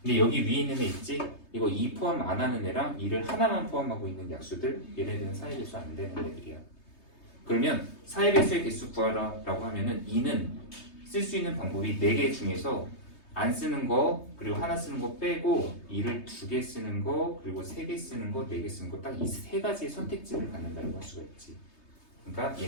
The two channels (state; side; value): late; right; 3.2 ms